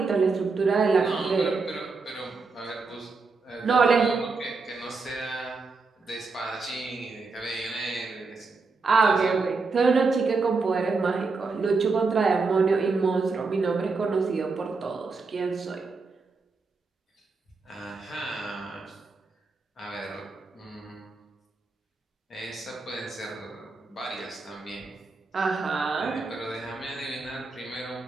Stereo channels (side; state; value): left; quieter; 4.2 dB